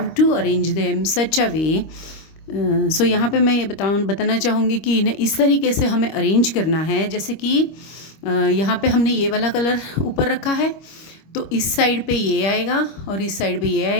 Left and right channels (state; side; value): late; right; 25 ms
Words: to arrange them such a way. सो यहाँ पे मैं ये बताना चाहूँगी कि इन्हें इस तरीके से हमें अरेंज करना है, जैसे कि यहाँ पे हमने ये वाला कलर ऊपर रखा है तो इस साइड पे ये आएगा और इस साइड पे ये